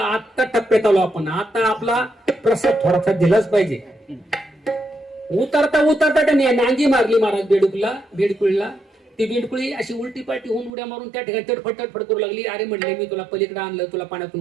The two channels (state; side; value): drops out; left; at 10.7 s